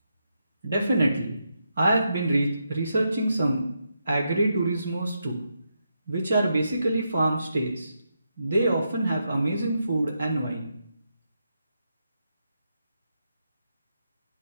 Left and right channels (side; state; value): both; inverted; correlation -0.83